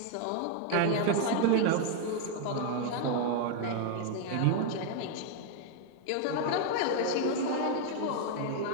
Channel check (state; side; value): different; both; correlation 0.00